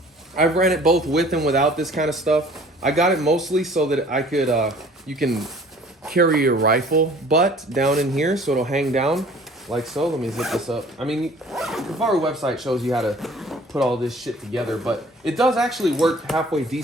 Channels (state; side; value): normal; both; correlation 0.51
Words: ran it both with and without this kind of stuff. I got it mostly so that I could, you can carry your rifle butt down in here so it'll hang down like so. Let me zip this up. I mean, the Kifaru website shows you how to put all this shit together, but it does actually work halfway